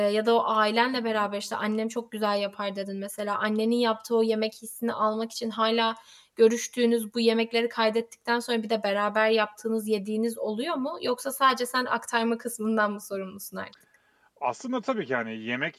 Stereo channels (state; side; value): identical; both; correlation 1.00